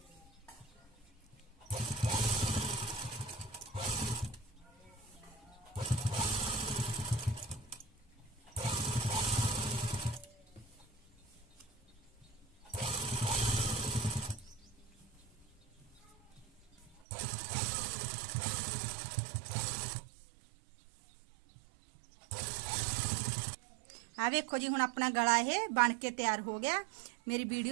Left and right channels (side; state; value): left; drops out; at 17.0 s